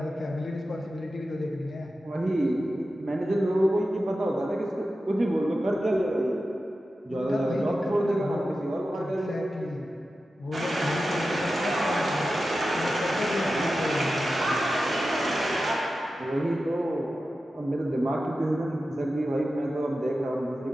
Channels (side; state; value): both; normal; correlation 0.93